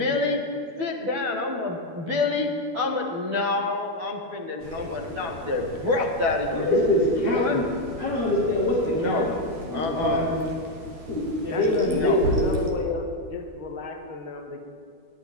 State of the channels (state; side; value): late; left; 13 ms